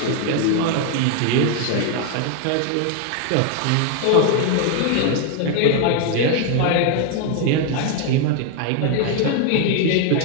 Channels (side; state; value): both; different; correlation 0.01